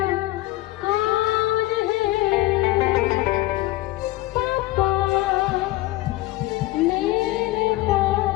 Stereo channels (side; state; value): right; quieter; 18.0 dB